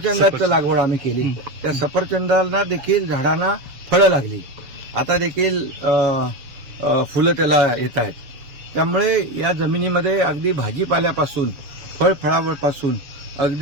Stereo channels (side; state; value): left; late; 7.0 ms